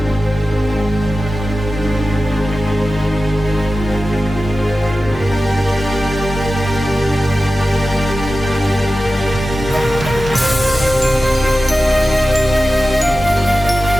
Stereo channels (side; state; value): both; normal; correlation 0.94